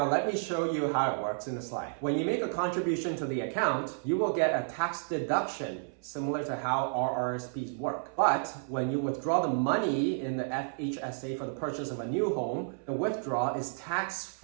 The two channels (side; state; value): left; silent; 57 dB below the other